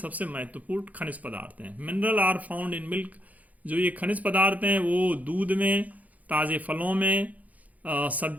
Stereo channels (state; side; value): late; left; 0.076 ms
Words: महत्वपूर्ण खनिज पदार्थ हैं। Mineral are found in milk. जो ये खनिज पदार्थ हैं वो दूध में, ताजे फलों में,